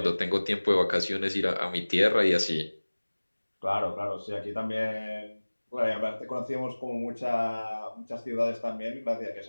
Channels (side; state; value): both; inverted; correlation -1.00